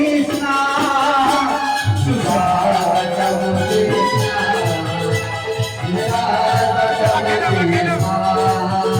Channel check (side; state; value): both; identical; correlation 1.00